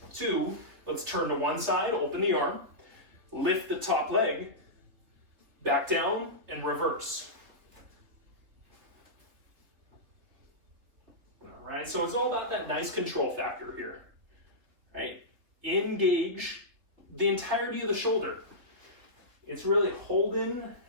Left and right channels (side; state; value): left; late; 3.6 ms